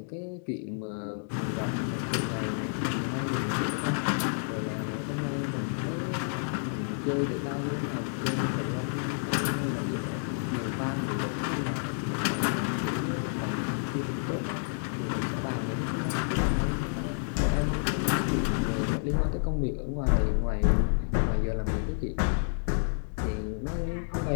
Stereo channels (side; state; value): right; silent; digital silence